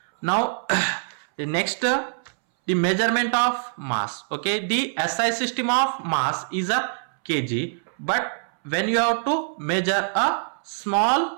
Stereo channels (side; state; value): left; silent; 62 dB below the other